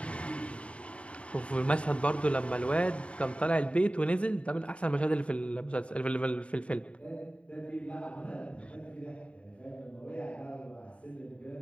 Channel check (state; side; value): late; right; 0.062 ms